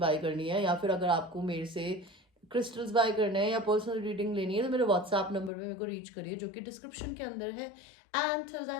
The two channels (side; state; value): right; drops out; at 5.5 s